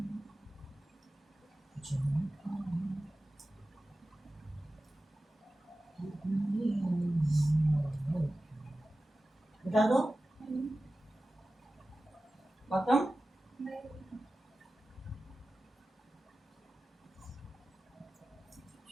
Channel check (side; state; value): both; normal; correlation 0.95